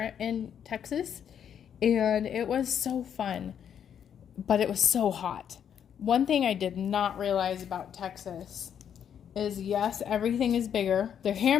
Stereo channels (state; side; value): quieter; right; 8.6 dB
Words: in Texas, and it was so fun, but it was so hot. One thing I did not realize about Texas is, yes, everything is bigger. Their